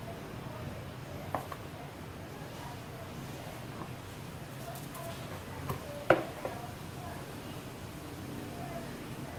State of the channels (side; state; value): both; identical; correlation 1.00